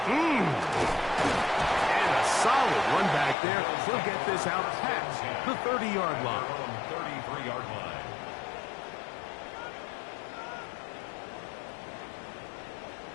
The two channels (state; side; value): drops out; right; at 3.4 s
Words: And a solid run back there. He'll get this out past the 30-yard line. 33-yard line.